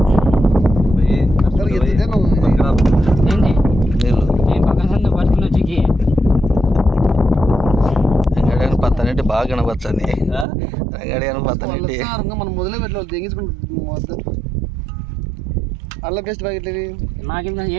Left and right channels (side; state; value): left; drops out; at 10.5 s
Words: నీళ్ళు రంగాడి పత్తనంటే బాగా కనపచ్చని రంగాడి అని పత్తనంటే మనం మొదలే పెట్టలేదు తెగించుకుంటాం అల్ల బెస్ట్ ప్యాకెట్లు ఇవి